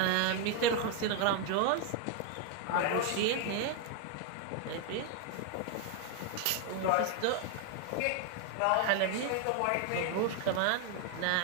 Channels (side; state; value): both; different; correlation 0.01